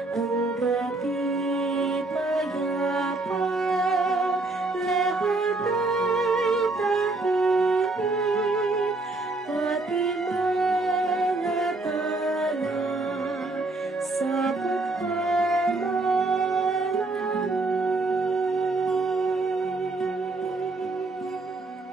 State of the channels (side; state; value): left; quieter; 3.2 dB